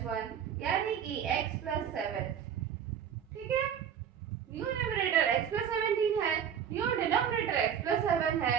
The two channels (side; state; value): left; quieter; 8.5 dB